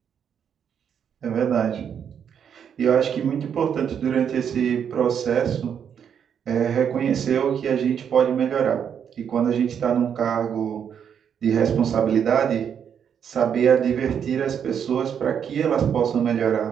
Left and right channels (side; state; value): left; quieter; 8.0 dB